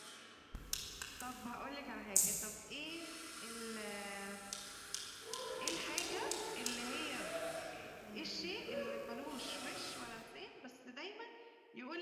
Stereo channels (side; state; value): both; identical; correlation 1.00